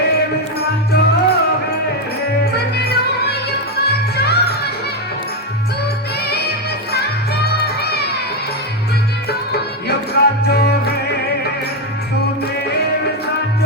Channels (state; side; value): normal; both; correlation 0.07